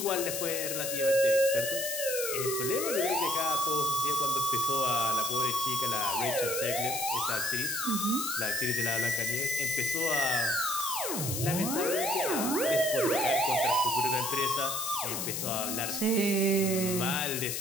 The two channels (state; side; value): noise; left; hiss, 2 dB below the sound